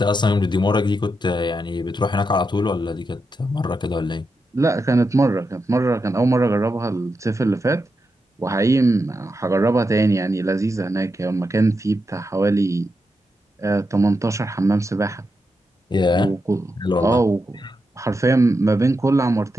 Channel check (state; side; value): normal; both; correlation 0.86